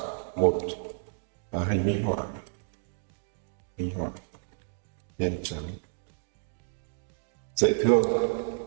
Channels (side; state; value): left; silent; digital silence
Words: một hình minh họa, nhân trắng dễ thương,